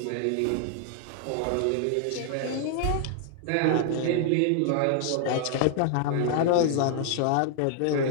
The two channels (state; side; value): different; both; correlation 0.00